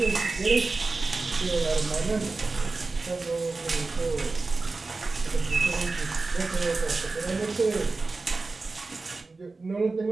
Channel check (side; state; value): left; quieter; 3.7 dB